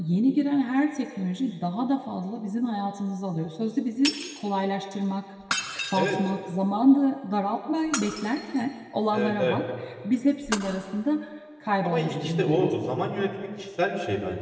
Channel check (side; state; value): both; identical; correlation 1.00